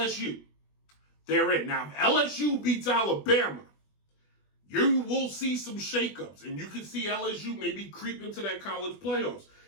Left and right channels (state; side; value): late; right; 20 ms